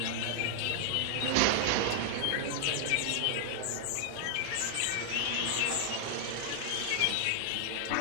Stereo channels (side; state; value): both; different; correlation 0.00